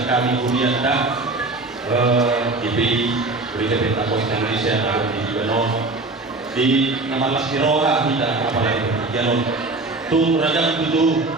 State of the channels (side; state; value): left; quieter; 3.2 dB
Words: kami kemudian tak diberi berikan Pos Indonesia atau di Gibano di nama Laskiroha kita apalagi pakikiano tung ragam itu